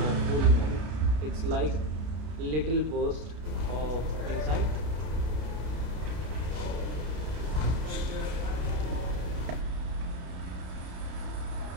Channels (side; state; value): left; late; 32 ms